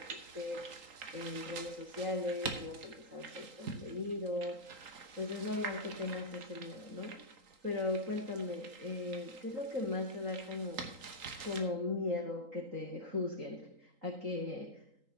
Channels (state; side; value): late; left; 3.8 ms